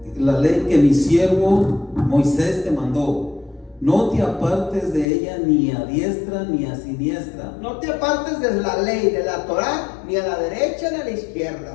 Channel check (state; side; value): drops out; right; at 5.1 s